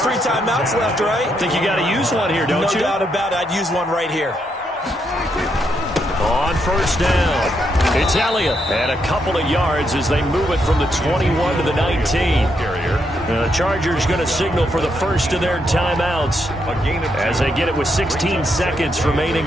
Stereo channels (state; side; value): normal; both; correlation 0.78